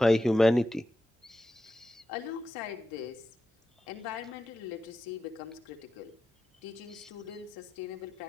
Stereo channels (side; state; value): both; normal; correlation 0.90